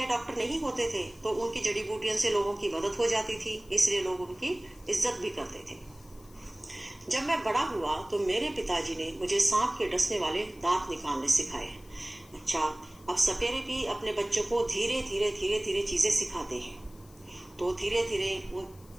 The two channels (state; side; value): noise; left; hiss, 25 dB below the sound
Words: डॉक्टर नहीं होते थे, तो उनकी जड़ी बूटियों से लोगों की मदद हो जाती थी, इसलिए लोग उनकी इज्जत भी करते थे। जब मैं बड़ा हुआ तो मेरे पिताजी ने मुझे सांप के डसने वाले दांत निकालने सिखाए। अच्छा, अब सपेरे भी अपने बच्चों को धीरे धीरे चीजें सिखाते हैं। तो धीरे धीरे